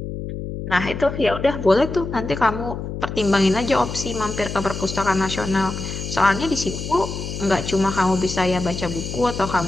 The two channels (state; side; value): noise; left; hum, 6 dB below the sound